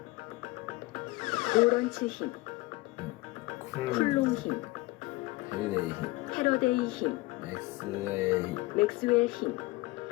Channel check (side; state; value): right; quieter; 21.3 dB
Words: 오런츠 힘, 쿨롱 힘, 패러데이 힘, 맥스웰 힘.